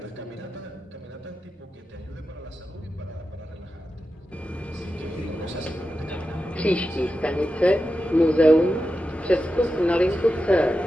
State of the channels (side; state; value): both; normal; correlation 0.91